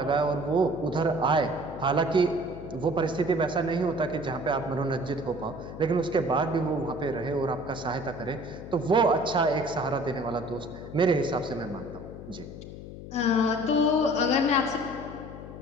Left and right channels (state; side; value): noise; left; hum, 12 dB below the sound